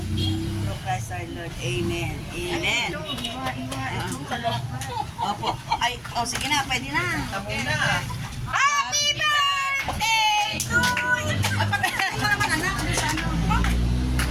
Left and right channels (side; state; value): both; identical; correlation 1.00